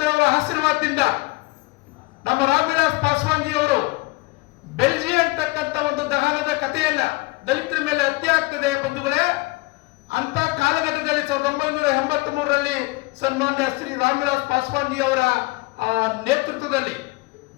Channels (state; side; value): quieter; right; 23.9 dB